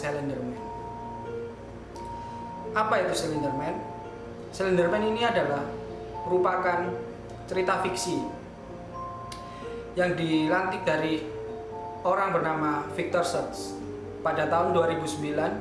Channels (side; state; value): both; identical; correlation 1.00